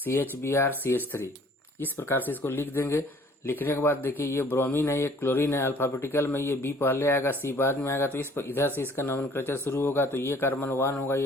CH3, इस प्रकार से इसको लिख देंगे। लिखने के बाद देखिए ये ब्रोमीन है, ये क्लोरीन है, अल्फाबेटिकल में ये बी पहले आएगा, सी बाद में आएगा, तो इस इधर से इसका नोमेनक्लेचर शुरू होगा। तो ये कार्बन 1 होगा,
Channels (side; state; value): both; normal; correlation 0.55